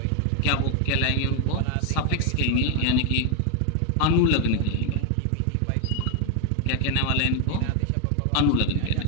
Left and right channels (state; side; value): different; both; correlation 0.01